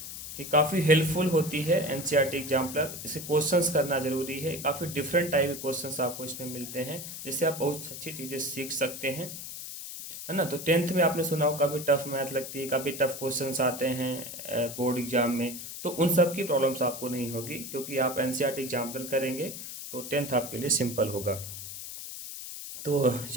ये काफ़ी हेल्पफुल होती है एनसीईआरटी एग्जाम्पलर। इसे क्वेश्चंस करना ज़रूरी है। काफ़ी डिफरेंट टाइप के क्वेश्चंस आपको इसमें मिलते हैं जिससे आप बहुत अच्छी चीज़ें सीख सकते हैं, है ना। तो टेंथ में आपने सुना हो काफ़ी टफ मैथ लगती है, काफ़ी टफ क्वेश्चंस आते हैं बोर्ड एग्जाम में। तो उन सब की प्रॉब्लम्स आपको नहीं होगी क्योंकि आप एनसीईआरटी एग्जाम्पल करेंगे तो टेंथ आपके लिए सिंपल होगा। तो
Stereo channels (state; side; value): noise; left; hiss, 9 dB below the sound